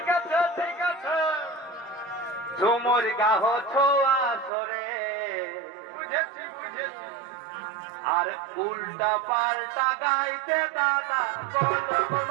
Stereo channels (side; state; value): left; drops out; at 4.5 s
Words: আছে ঠিক আছে, ঝুমুর গাহ ছোয়া সরে, বুঝেছি বুঝেছি, আর উল্টা পাল্টা গাইতে দাদা বলক